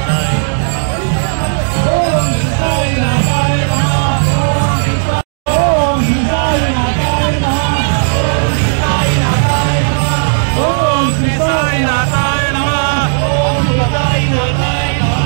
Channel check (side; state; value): left; silent; digital silence